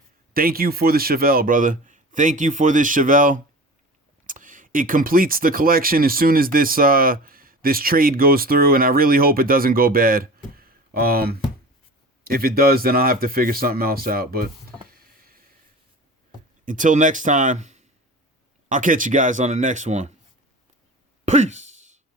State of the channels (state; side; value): normal; both; correlation 0.36